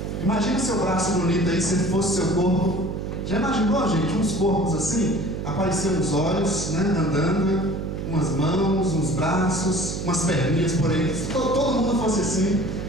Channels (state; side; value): noise; right; hum, 5 dB below the sound